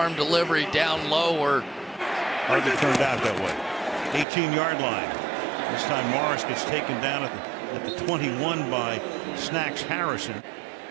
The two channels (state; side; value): drops out; left; at 4.2 s